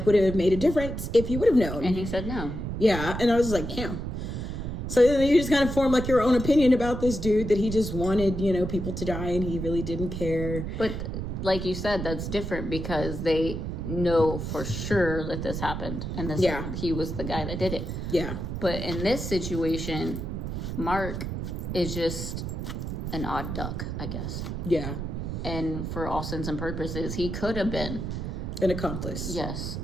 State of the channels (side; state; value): right; noise; rumble, 4 dB below the sound